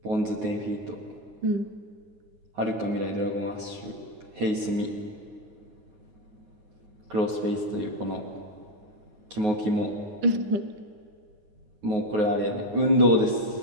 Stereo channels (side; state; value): left; late; 9.4 ms